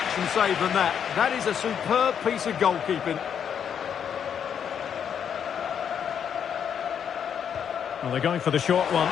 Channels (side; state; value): right; quieter; 8.1 dB